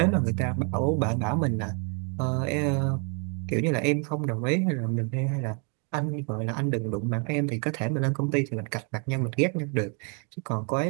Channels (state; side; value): quieter; left; 38.0 dB